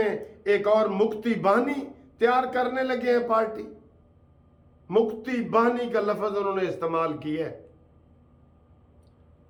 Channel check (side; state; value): both; identical; correlation 1.00